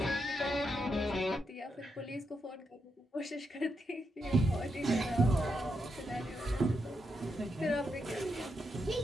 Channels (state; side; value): normal; both; correlation 0.83